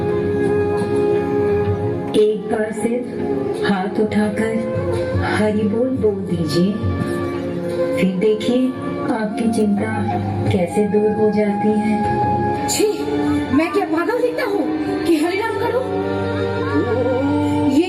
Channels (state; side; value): identical; both; correlation 1.00